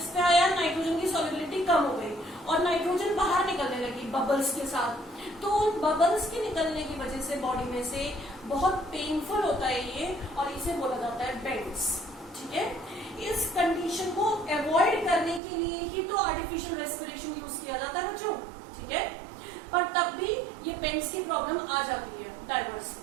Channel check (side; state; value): left; drops out; at 15.4 s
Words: पे आया नाइट्रोजन की सॉल्युबिलिटी कम हो गई और नाइट्रोजन बाहर निकलने लगी बबल्स के साथ। तो उन बबल्स के निकलने की वजह से बॉडी में से बहुत पेनफुल होता है ये, और इसे बोला जाता है बेड्स। ठीक है, इस कंडीशन को अवॉइड करने के लिए ही तो आर्टिफिशियल रेस्पिरेशन यूज किया जाता है बच्चों। ठीक है, पर तब भी ये बेड्स की प्रॉब्लम आ जाती है डाइवर्स।